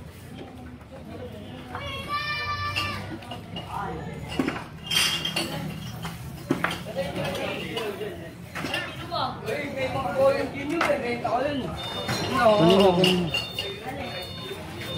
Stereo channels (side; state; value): both; identical; correlation 1.00